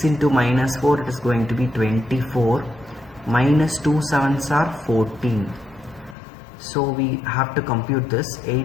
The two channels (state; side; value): drops out; right; at 6.2 s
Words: into minus 4, it is going to be 24. Minus 2 7s are 14. So we have to compute this.